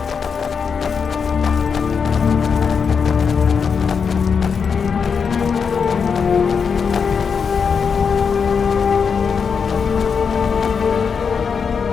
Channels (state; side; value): quieter; right; 6.1 dB